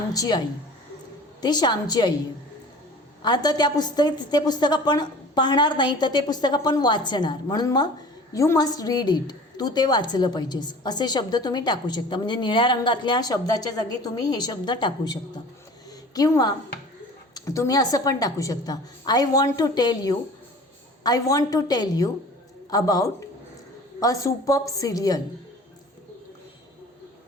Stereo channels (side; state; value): both; normal; correlation 0.43